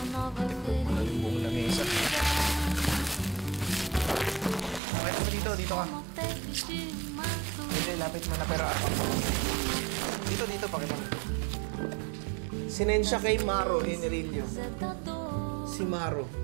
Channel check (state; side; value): drops out; left; at 4.8 s